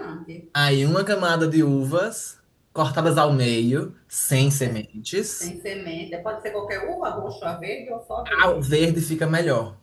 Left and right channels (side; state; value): both; identical; correlation 1.00